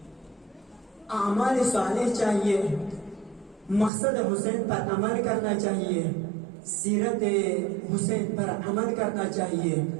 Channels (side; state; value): left; drops out; at 3.9 s